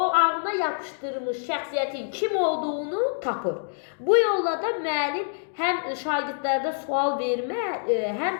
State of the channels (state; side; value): silent; right; digital silence